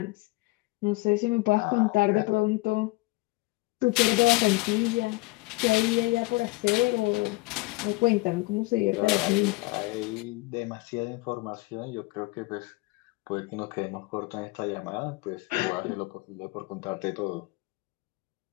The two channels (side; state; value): right; quieter; 22.9 dB